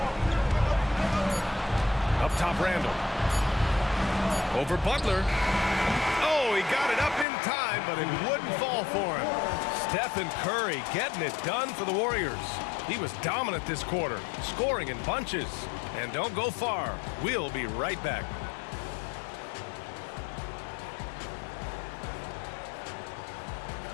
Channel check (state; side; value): drops out; right; at 7.2 s